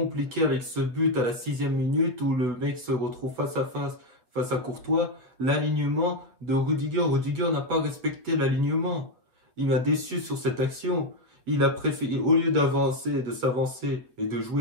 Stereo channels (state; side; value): late; left; 7.8 ms